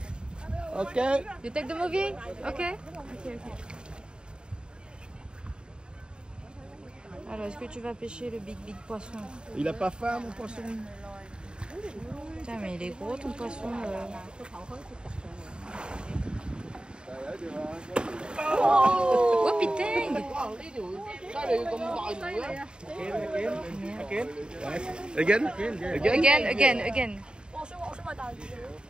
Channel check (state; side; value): late; left; 0.050 ms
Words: Ok. You take the movie? Okay. Alors, est-ce que tu vas pêcher le big poisson? Il a pas faim, mon poisson. Putain, mais il est gros ton poisson. Oh putain! Again? Again.